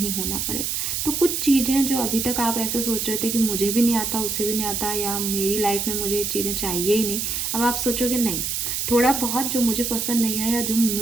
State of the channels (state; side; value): noise; right; hiss, 1 dB below the sound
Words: होना पड़े। तो कुछ चीज़ें जो अभी तक आप ऐसे सोच रहे थे कि मुझे भी नहीं आता, उसे भी नहीं आता, या मेरी लाइफ में मुझे ये चीज़ें चाहिए ही नहीं, अब आप सोचोगे नहीं, थोड़ा बहुत जो मुझे पसंद नहीं है या जो